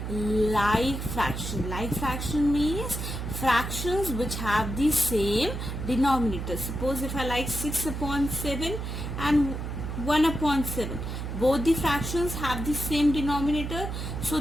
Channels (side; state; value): right; noise; hum, 5 dB below the sound